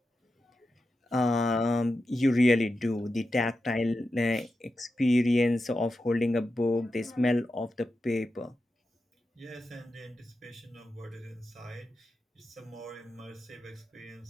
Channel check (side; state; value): both; normal; correlation 0.90